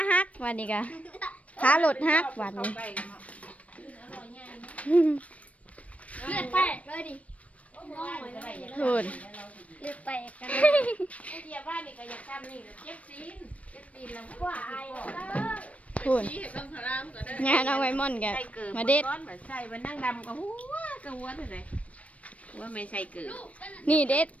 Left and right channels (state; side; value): late; right; 0.066 ms